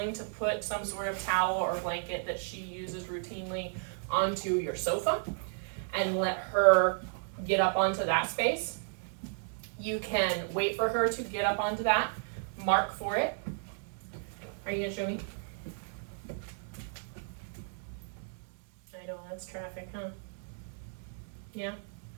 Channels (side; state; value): left; silent; digital silence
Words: to put some sort of towel or blanket that she uses routinely onto your sofa and let her get up onto that space. You can wait for her to get up onto that, mark for it. Are you going to show me? I know, that's traffic, huh? Yeah?